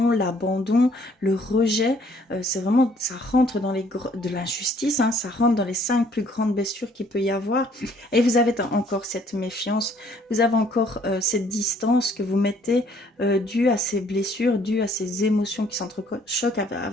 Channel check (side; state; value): both; normal; correlation 0.62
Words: l'abandon, le rejet. C'est vraiment, ça rentre dans de l'injustice, hein, ça rentre dans les 5 plus grandes blessures qu'il peut y avoir. Et vous avez encore cette méfiance, vous avez encore cette distance que vous mettez due à ces blessures, due à ces émotions qui s'entrechoquent